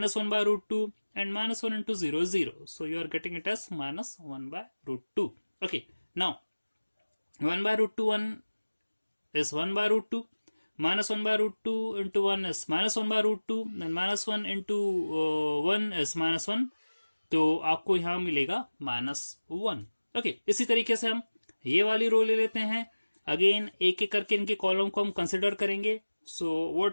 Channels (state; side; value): inverted; both; correlation -1.00